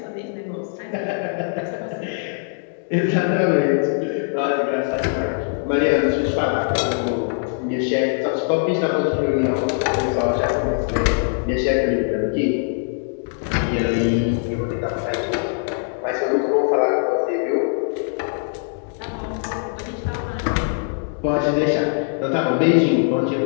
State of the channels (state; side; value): silent; right; 64 dB below the other